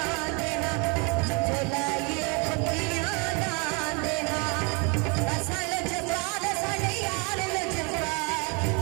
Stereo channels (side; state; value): left; quieter; 32.4 dB